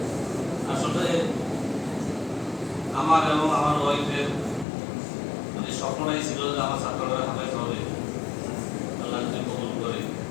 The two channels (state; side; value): drops out; right; at 4.7 s